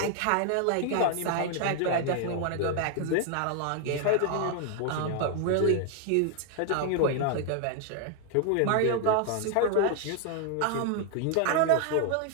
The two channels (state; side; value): different; both; correlation 0.00